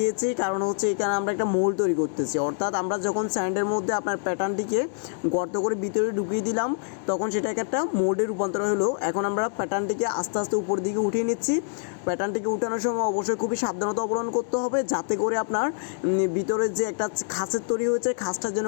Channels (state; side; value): silent; right; digital silence